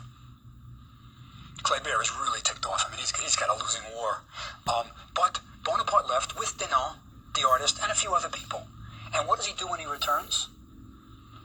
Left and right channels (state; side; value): identical; both; correlation 1.00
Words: Kléber is really ticked off. I mean, he's got a losing war. But Bonaparte left with Denon, the artist, and a few other people. And what does he do when he returns?